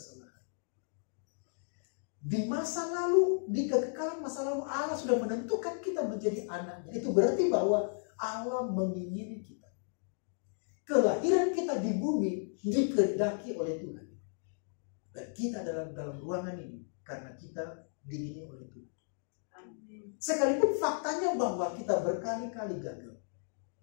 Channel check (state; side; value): silent; right; digital silence